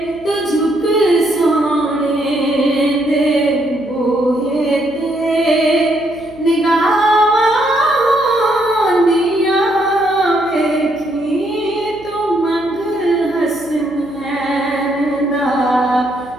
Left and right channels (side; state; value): right; noise; hum, 23 dB below the sound